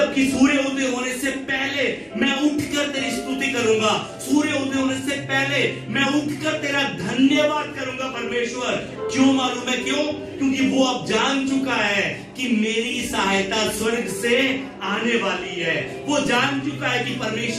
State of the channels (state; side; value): identical; both; correlation 1.00